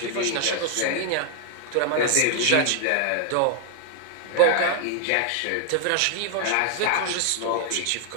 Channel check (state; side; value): different; both; correlation 0.00